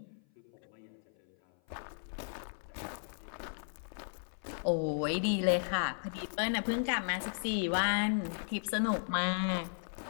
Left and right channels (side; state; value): right; silent; 54 dB below the other